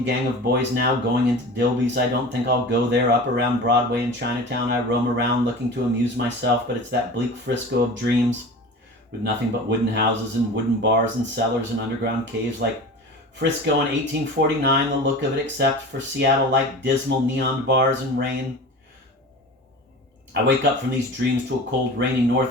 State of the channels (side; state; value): both; normal; correlation 0.35